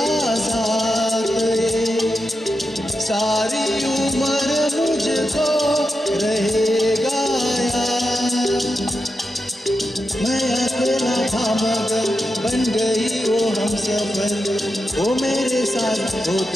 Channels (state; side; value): normal; both; correlation 0.88